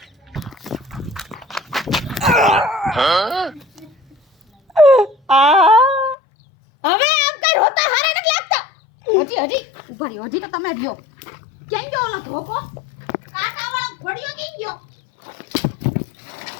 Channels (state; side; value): drops out; right; at 6.2 s